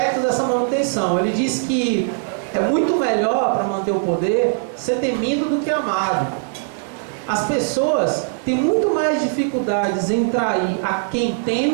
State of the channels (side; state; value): left; silent; digital silence